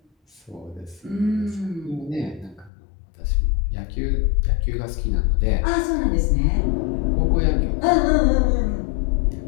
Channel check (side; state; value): right; drops out; at 2.7 s